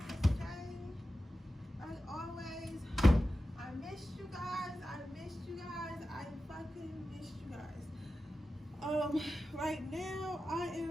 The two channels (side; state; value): both; normal; correlation 0.93